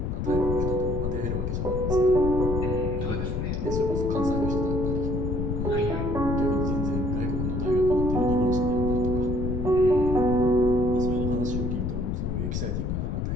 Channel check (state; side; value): noise; left; rumble, 1 dB below the sound